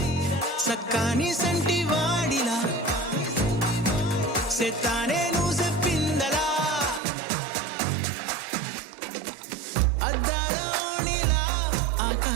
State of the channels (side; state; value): left; drops out; at 7.0 s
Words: సక్కాని సంటి వాడిలా సెత్తానే నువ్వు చెప్పిందలా అద్దాల ఓణిలా